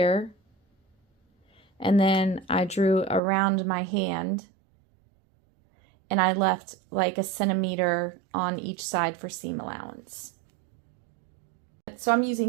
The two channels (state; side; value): drops out; left; at 3.2 s